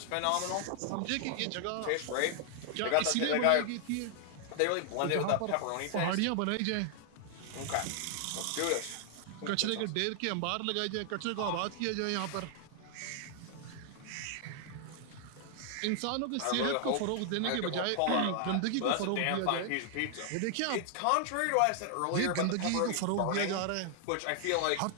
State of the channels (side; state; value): both; different; correlation 0.00